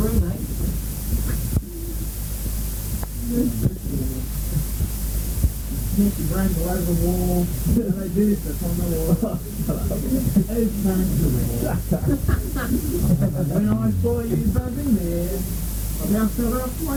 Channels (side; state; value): both; identical; correlation 1.00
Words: mate. Smash your brains all over the wall. They do this on the wall. It's comfortable. When I saw you buzzing there, I bounced it off